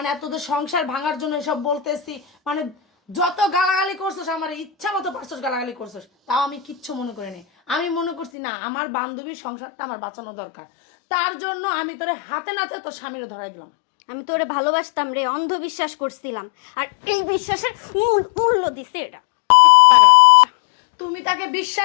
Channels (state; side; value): drops out; right; at 8.3 s